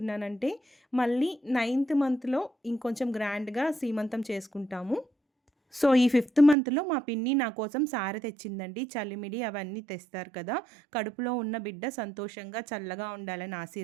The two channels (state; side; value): drops out; left; at 6.6 s